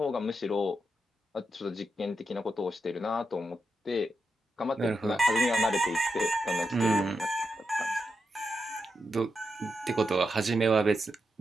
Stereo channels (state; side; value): normal; both; correlation 0.85